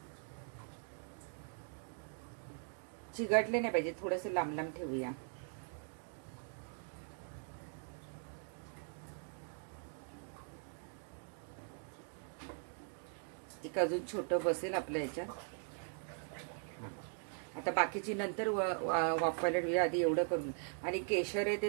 चिघटले नाही पाहिजे, थोडस लांब लांब ठेवूया. एक अजून छोटं बसेल आपल्या याच्यात. आता बाकीची नंतर वाफवायला ठेवूया. आधी एवढं करून. आणि केशर आहे ते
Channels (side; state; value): left; silent; 51 dB below the other